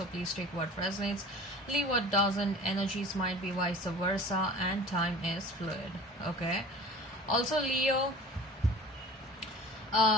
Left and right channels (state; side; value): normal; both; correlation 0.42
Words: please take what resonates, leave what doesn't. Energies might be vice versa and time is fluid. Okay. Also Leo,